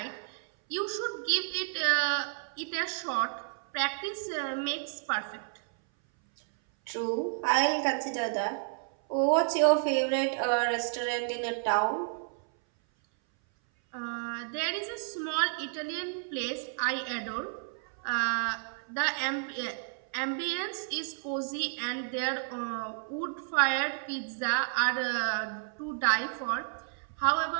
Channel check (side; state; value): left; silent; 57 dB below the other